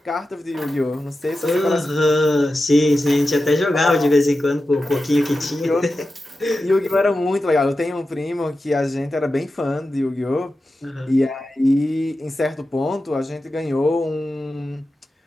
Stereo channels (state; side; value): normal; both; correlation 0.92